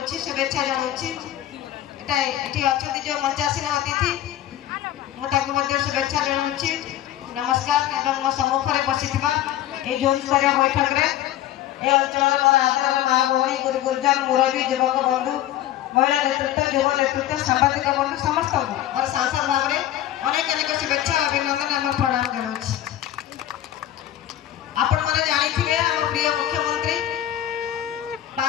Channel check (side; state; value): right; quieter; 12.7 dB